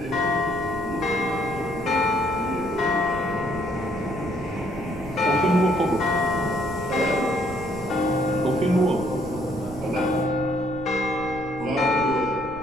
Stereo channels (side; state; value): right; noise; rumble, 15 dB below the sound